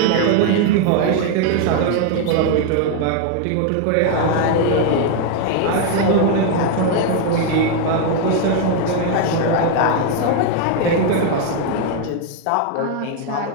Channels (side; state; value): both; different; correlation 0.01